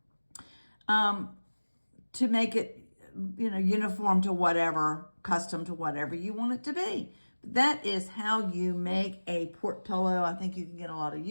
to make it uniform to whatever, custom to whatever you want it to be. That is how you make a port pillow. I think you can get a lot of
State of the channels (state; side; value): inverted; both; correlation -1.00